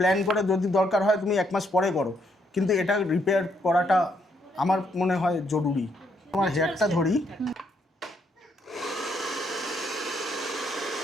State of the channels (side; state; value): both; normal; correlation 0.73